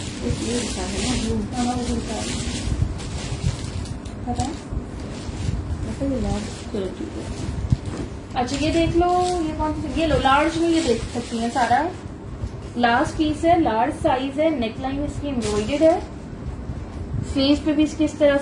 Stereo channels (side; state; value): both; identical; correlation 1.00